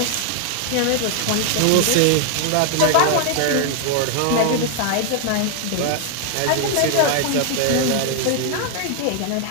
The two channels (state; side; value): different; both; correlation 0.00